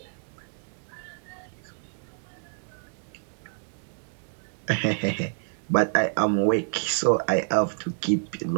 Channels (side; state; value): left; silent; digital silence